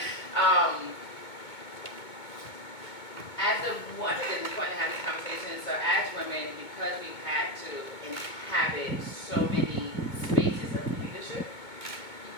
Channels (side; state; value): right; late; 2.2 ms